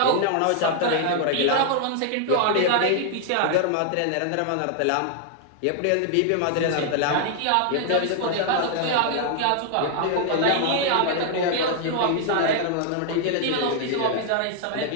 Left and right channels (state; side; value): different; both; correlation 0.00